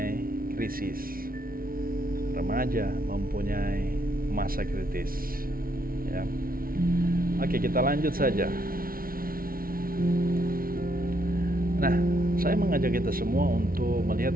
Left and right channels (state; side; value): late; left; 0.43 ms